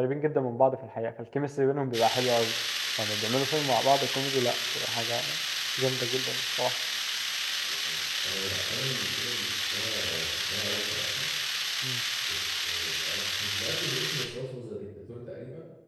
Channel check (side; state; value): both; identical; correlation 1.00